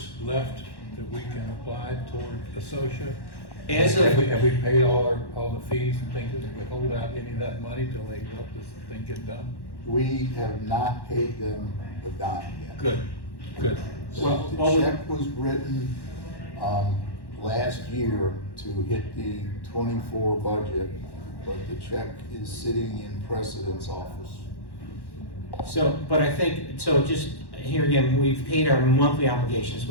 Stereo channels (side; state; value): right; late; 1.1 ms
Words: left that we can apply toward Associa? As Have of, we paid all the fees and things? Did we hold out any of that money till they help this thing get done? We have not paid them a dime yet. Good, good. Well, The check was written last year to hit the '24 budget, but the check is sitting in President's office. but I think, so just here again, we've paid our monthly obligations.